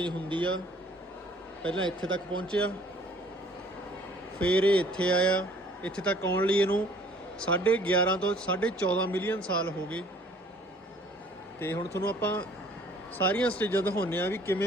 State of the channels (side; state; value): both; normal; correlation 0.56